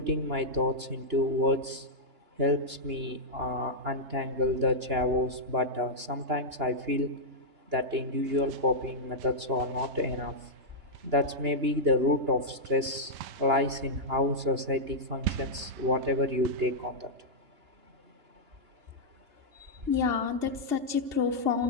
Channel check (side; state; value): left; late; 2.9 ms